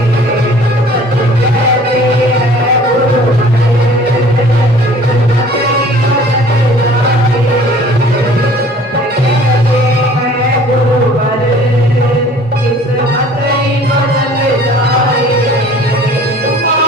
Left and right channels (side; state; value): both; normal; correlation 0.50